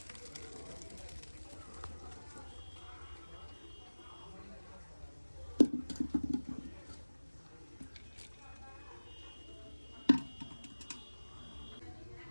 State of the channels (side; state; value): both; inverted; correlation -1.00